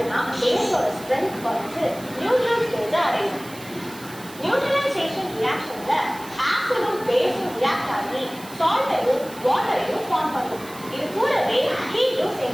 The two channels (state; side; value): noise; right; hiss, 18 dB below the sound